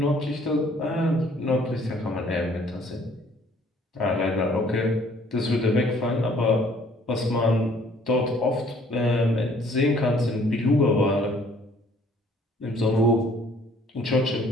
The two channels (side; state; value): both; normal; correlation 0.59